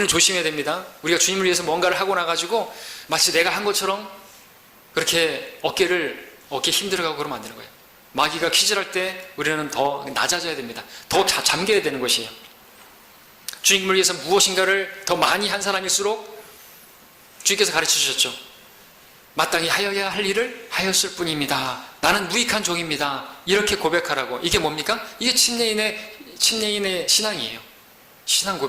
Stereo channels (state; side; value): identical; both; correlation 1.00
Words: 조심해야 됩니다. 우리가 주님을 위해서 뭔가를 하고 나가지고 마치 내가 한 것처럼 그렇게 어깨에 힘들어가고 그러면 안 되는 거예요. 마귀가 퀴즈할 때 우리는 더 낮아져야 됩니다. 더 잠겨야 되는 것이에요. 주님을 위해서 무엇인가를 더 많이 한 사람일수록 주님께서 가르쳐 주셨죠. 마땅히 하여야 할 일을 하였을 뿐입니다. 나는 무익한 종입니다. 이렇게 고백하라고. 이게 뭡니까? 이게 침례인의 신앙이에요. 신앙